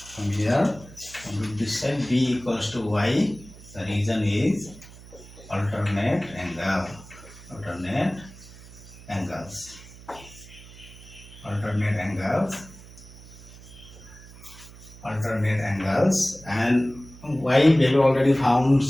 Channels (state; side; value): noise; right; hum, 19 dB below the sound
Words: from here, from this side, B equals to Y. The reason is alternate angle. Alternate angles. And Y value already found